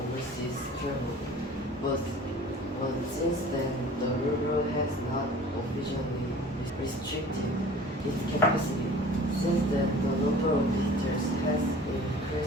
travel. But since then, the river has not officially restricted its capacity. Since then, the number of visitors has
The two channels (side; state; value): both; normal; correlation 0.45